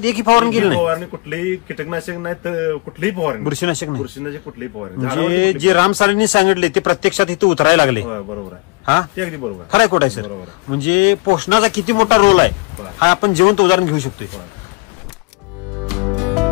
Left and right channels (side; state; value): right; quieter; 27.8 dB